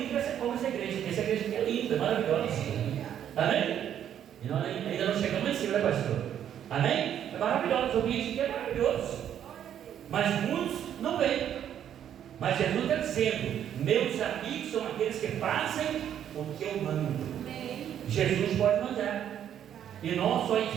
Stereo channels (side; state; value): left; quieter; 9.9 dB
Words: como essa igreja. Essa igreja aqui é linda, maravilhosa. Amém? E nós ainda não chegamos em cima, né, pastor? Amém? É maravilhoso, o ambiente aqui é maravilhoso. Mas muitos não vêm. Mas Jesus está dizendo: meus amigos são aqueles que fazem o que eu mando. Jesus pode mandar. E nós só